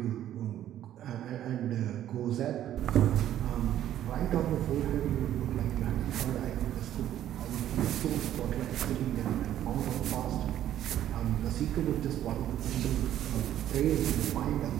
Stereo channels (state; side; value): quieter; left; 11.8 dB